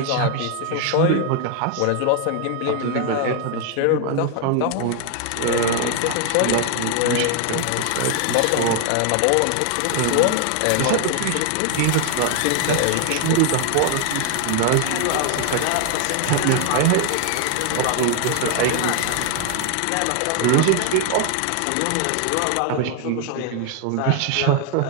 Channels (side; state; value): both; different; correlation 0.00